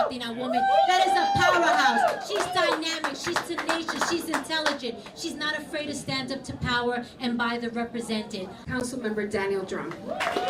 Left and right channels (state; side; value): identical; both; correlation 1.00